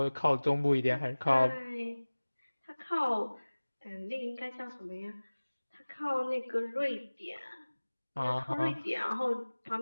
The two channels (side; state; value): both; inverted; correlation -1.00